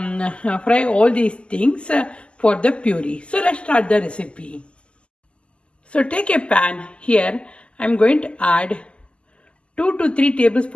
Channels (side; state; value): right; late; 0.053 ms